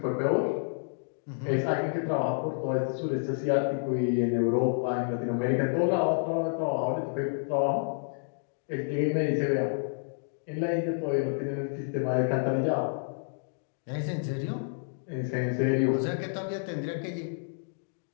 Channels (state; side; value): silent; right; digital silence